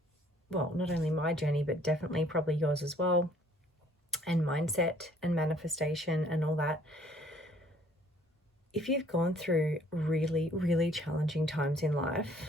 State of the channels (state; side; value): normal; both; correlation 0.59